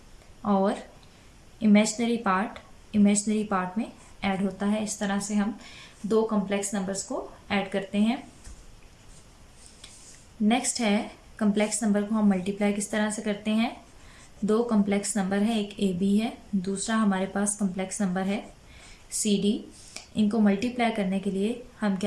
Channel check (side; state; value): both; identical; correlation 1.00